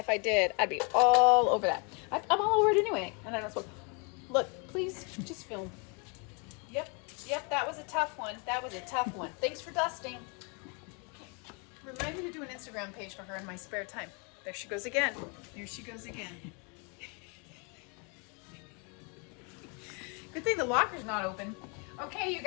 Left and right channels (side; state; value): right; quieter; 34.4 dB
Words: I did, I'd be all over that. I'm all over it anyway, and I don't smoke. Look, please, just film. Yep, that was a tough one. That was a tough one. Thanks for dusting. Remind me to do an Instagram page for her in my spare time. There she goes again. There she goes again. Good thing the locker's not open. Okay, you